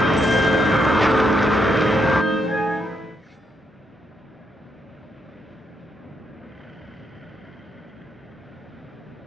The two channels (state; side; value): normal; both; correlation 0.78